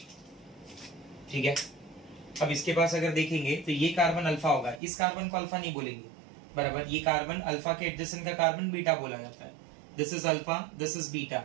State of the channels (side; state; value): left; drops out; at 4.8 s